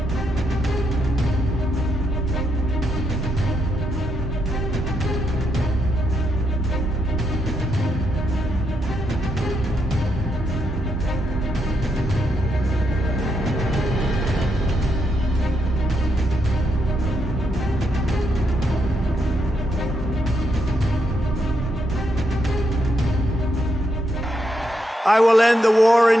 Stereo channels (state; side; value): normal; both; correlation 0.79